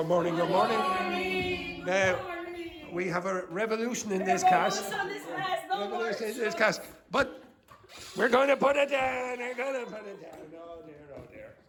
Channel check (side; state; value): both; identical; correlation 1.00